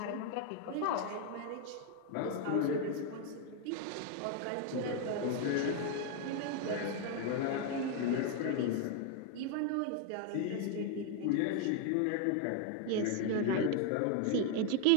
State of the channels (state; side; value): different; both; correlation 0.01